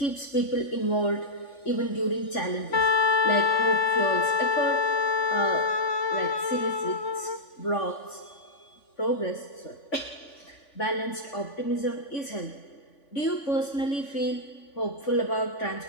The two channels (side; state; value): right; late; 3.5 ms